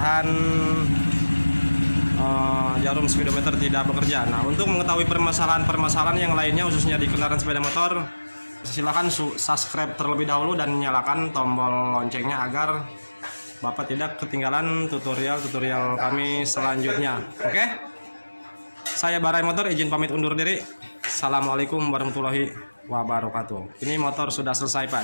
jarum speedometer tidak bekerja. Nah, untuk mengetahui permasalahan yang lainnya khususnya di kendaraan sepeda motor, silahkan subscribe terlebih dahulu dan nyalakan tombol loncengnya agar Bapak tidak ketinggalan tutorial-tutorial kami selanjutnya. Oke? Saya Barai Motor izin pamit undur diri. Assalamualaikum warahmatullahi wabarakatuh. Ini motor sudah selesai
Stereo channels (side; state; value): both; inverted; correlation -1.00